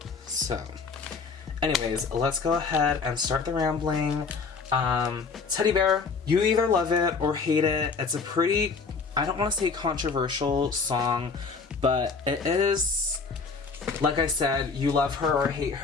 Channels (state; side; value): quieter; right; 4.8 dB